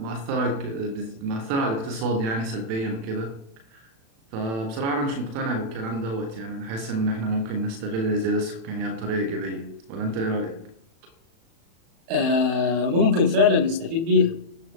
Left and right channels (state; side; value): late; left; 36 ms